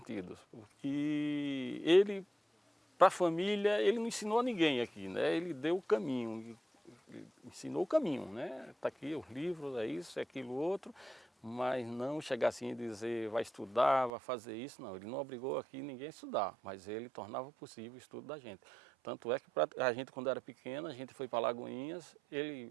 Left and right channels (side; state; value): left; drops out; at 14.1 s